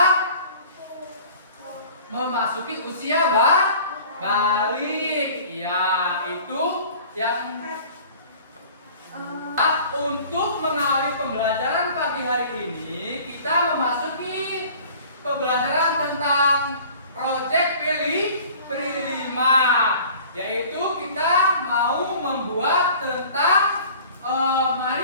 memasuki usia balik. Ya, itu yang untuk mengawali pembelajaran pagi hari ini, kita memasuki pembelajaran tentang proyek P5, yaitu kita mau membuat tentang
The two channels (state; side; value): inverted; both; correlation -0.47